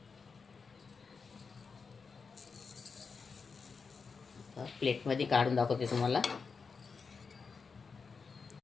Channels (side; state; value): right; quieter; 5.1 dB